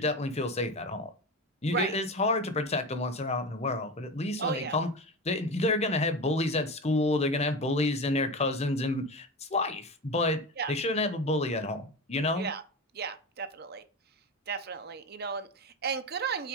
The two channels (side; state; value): both; normal; correlation 0.24